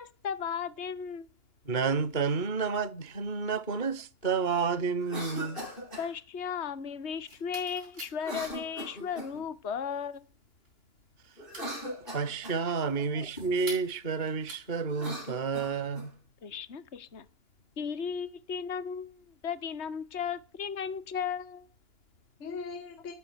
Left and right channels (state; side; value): late; right; 2.9 ms